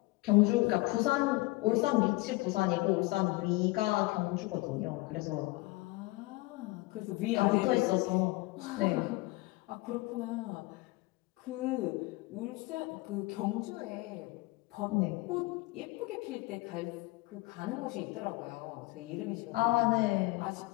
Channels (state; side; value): quieter; right; 22.1 dB